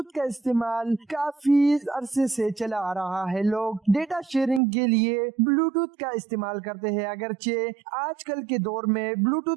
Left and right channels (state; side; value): drops out; left; at 4.6 s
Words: का इस्तेमाल काफी अरसे से चला आ रहा है। लोग डेटा शेयरिंग के लिए ब्लूटूथ का इस्तेमाल करते हैं, अगरचे आजकल के दौर में